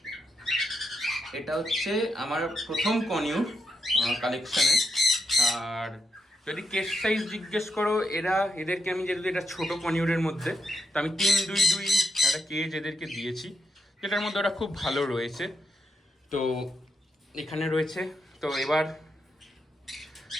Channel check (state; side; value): normal; both; correlation 0.83